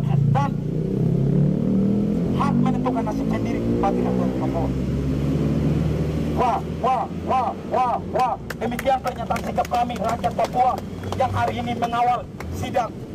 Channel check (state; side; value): identical; both; correlation 1.00